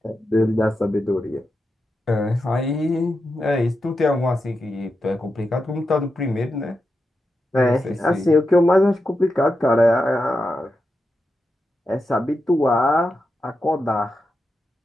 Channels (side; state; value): both; normal; correlation 0.88